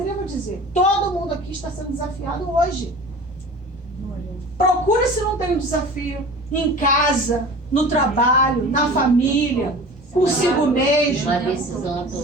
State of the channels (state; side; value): normal; both; correlation 0.39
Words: a dizer, todo mundo aqui está sendo desafiado hoje. Procura se não tem um desafio em casa, no trabalho, na família, consigo mesmo. Uma decisão.